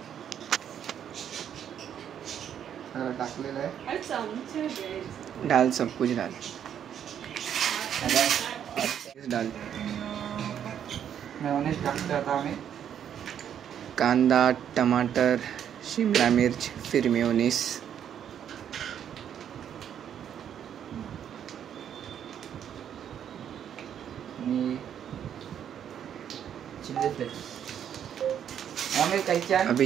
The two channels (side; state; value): left; quieter; 9.2 dB